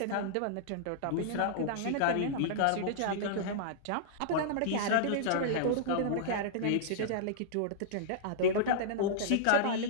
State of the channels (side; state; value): both; different; correlation -0.02